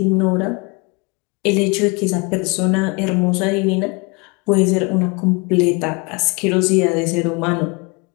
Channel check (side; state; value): right; quieter; 28.9 dB